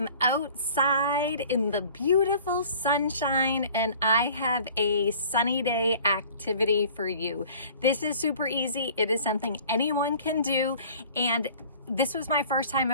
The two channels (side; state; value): both; inverted; correlation -0.48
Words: outside in the beautiful sunshine and I have a sunny day activity for you. This is super easy. It is something anyone can do, and this was my first time